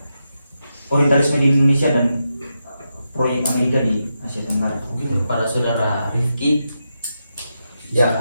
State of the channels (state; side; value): inverted; both; correlation -0.86